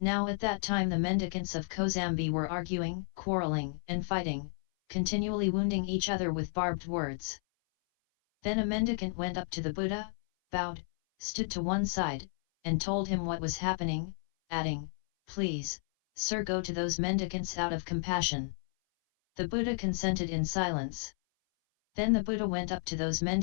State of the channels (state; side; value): silent; right; 56 dB below the other